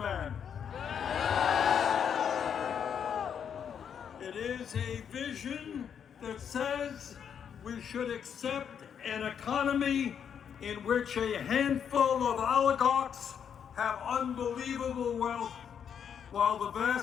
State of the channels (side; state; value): right; quieter; 7.9 dB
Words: It is a vision that says we should accept an economy in which a handful of oligarchs have unbelievable wealth, while the